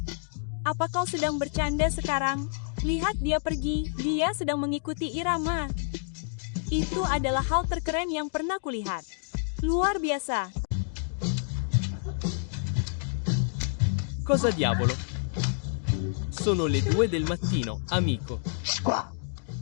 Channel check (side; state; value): right; silent; digital silence